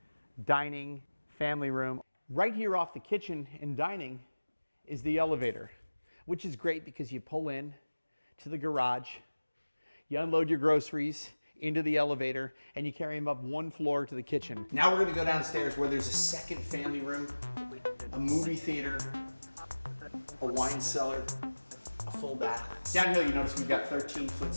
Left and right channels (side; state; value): both; inverted; correlation -1.00